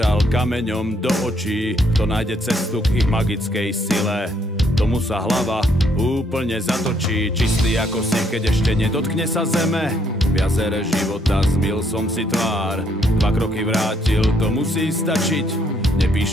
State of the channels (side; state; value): both; normal; correlation 0.70